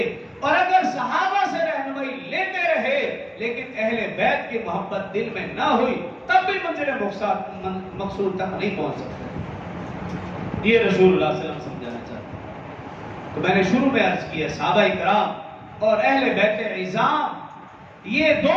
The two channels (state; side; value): identical; both; correlation 1.00